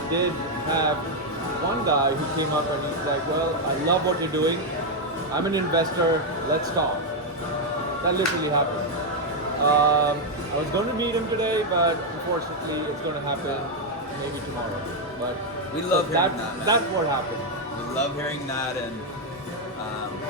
did have one guy who came up and he's like, well, I love what you're doing. I'm an investor. Let's talk. That literally happened. I was going to meet him today, but unfortunately it's going to happen maybe tomorrow. But We love hearing that, man. That's what happened. We love hearing that, and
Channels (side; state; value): both; normal; correlation 0.02